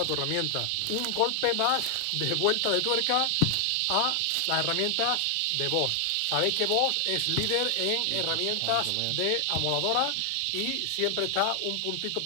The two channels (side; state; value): both; different; correlation 0.00